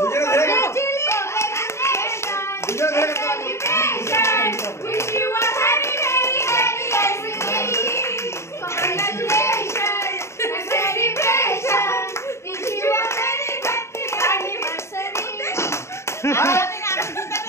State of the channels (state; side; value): late; right; 0.13 ms